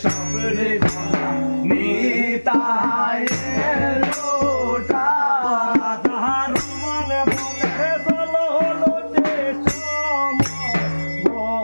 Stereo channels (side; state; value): both; inverted; correlation -1.00